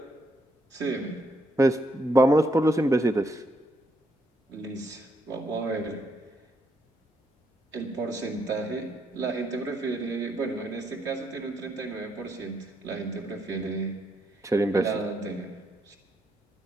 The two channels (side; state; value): both; normal; correlation 0.76